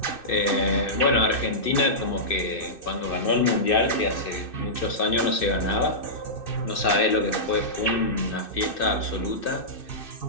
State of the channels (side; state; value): right; late; 2.6 ms